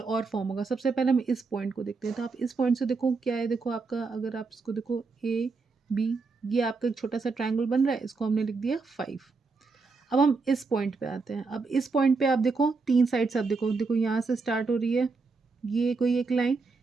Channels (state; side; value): quieter; left; 4.3 dB